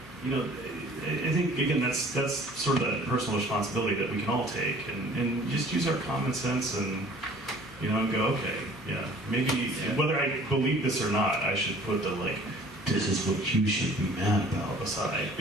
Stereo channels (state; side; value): normal; both; correlation 0.50